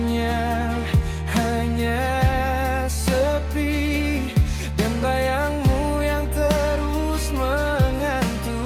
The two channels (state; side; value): identical; both; correlation 1.00